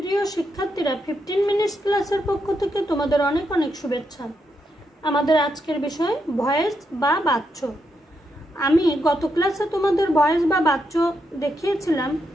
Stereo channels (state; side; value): normal; both; correlation 0.82